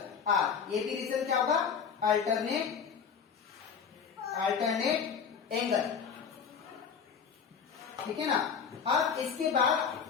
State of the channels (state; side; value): quieter; right; 6.7 dB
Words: R। ये भी रीजन क्या होगा? Alternate angle. ठीक है ना। अब इसके